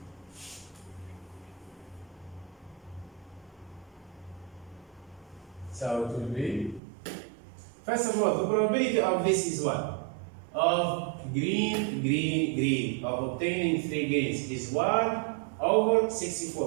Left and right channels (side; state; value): left; drops out; at 6.8 s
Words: So it will be, first of all, the probability of this is what? Of green, green, green, of obtaining 3 greens is 1 over